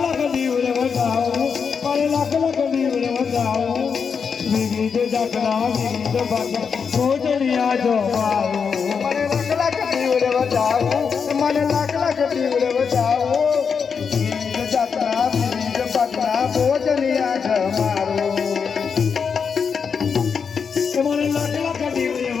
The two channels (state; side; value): quieter; right; 6.1 dB